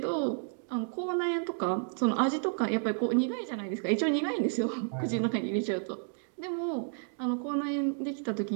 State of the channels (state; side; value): silent; left; 57 dB below the other